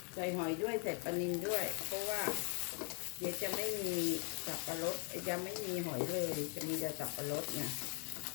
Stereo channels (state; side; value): quieter; right; 37.6 dB